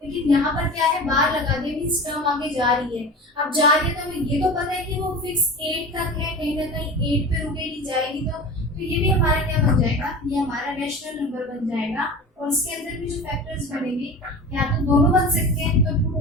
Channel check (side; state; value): both; normal; correlation 0.33